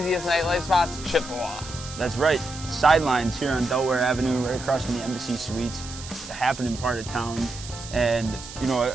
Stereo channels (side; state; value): right; noise; hiss, 13 dB below the sound